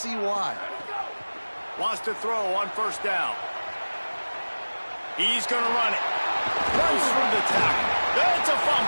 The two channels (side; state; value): both; inverted; correlation -1.00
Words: why. Wants to throw on 1st down. He's going to run it. Runs through the tackle. That's a